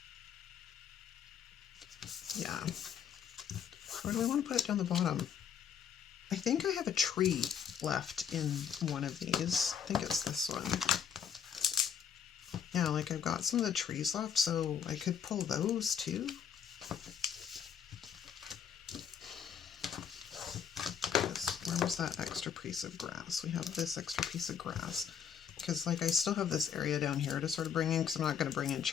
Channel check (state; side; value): quieter; right; 7.9 dB